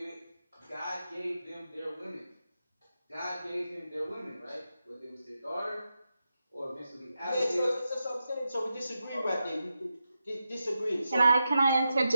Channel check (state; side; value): inverted; both; correlation -0.89